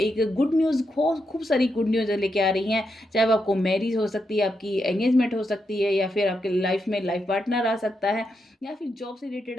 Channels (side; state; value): both; normal; correlation 0.83